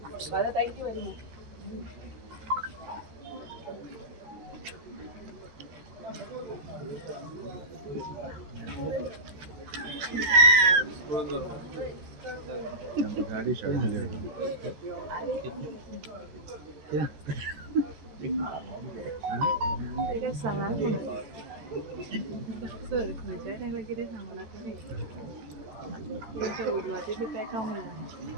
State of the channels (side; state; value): left; late; 14 ms